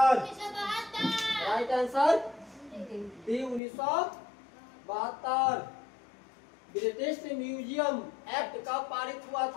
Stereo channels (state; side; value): drops out; right; at 3.6 s